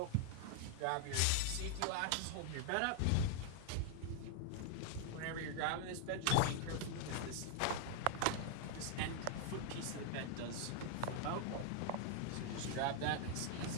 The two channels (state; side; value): different; both; correlation 0.00